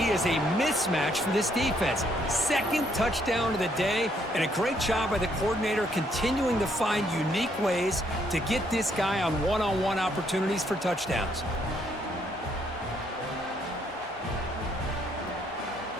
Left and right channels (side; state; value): both; normal; correlation 0.71